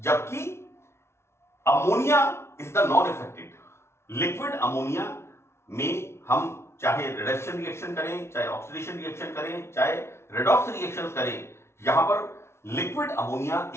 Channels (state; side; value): late; right; 0.13 ms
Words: ammonia is the non affected. Liquid ammonia में हम चाहे रिडक्शन रिएक्शन करें, चाहे ऑक्सीडेशन रिएक्शन करें, चाहे रेडॉक्स रिएक्शन करें, यहां पर लिक्विड अमोनिया